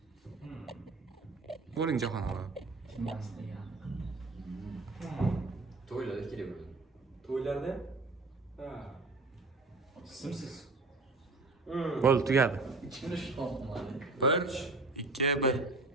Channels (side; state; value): left; quieter; 3.4 dB